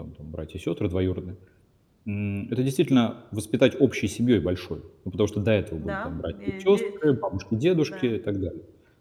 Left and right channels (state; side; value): identical; both; correlation 1.00